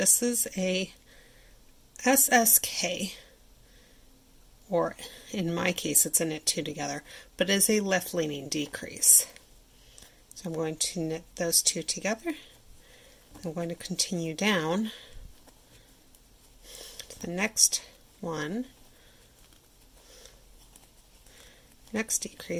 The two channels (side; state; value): both; identical; correlation 1.00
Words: is a SSK, or in my case it's a knit 2 together, but it is a left leaning decrease. So I'm going to knit those 2 together. I'm going to continue down to the next one, next